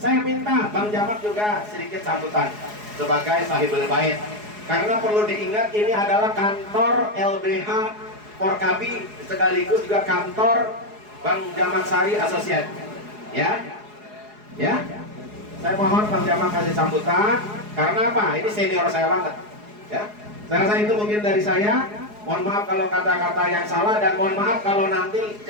saya minta Bang Jamak juga sedikit sambutan sebagai sahibul bait. Karena perlu diingat ini adalah kantor LBH Porkapi sekaligus juga kantor Bang Jamak Sari Associate. Ya, ya. Saya mohon Bang Jamak kasih sambutan. Karena apa? Ini senior saya banget. Ya, saya rasa itu mungkin dari saya. Mohon maaf kalau kata-kata yang salah, dan mohon maaf kalau nanti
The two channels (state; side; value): late; left; 4.8 ms